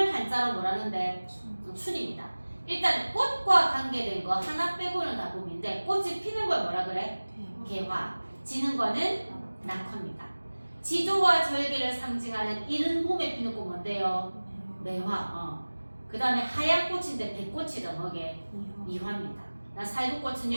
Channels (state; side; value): inverted; both; correlation -1.00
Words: 한자로 뭐라는데 춘입니다. 일단 꽃과 관계된 거 하나 빼고는 다 봄인데 꽃이 피는 걸 뭐라 그래? 개화. 지는 거는 낙화입니다. 지조와 절개를 상징하는 이른 봄에 피는 꽃 뭔데요? 매화. 그 다음에 하얀 꽃인데 백꽃이다 뭐게? 미화입니다.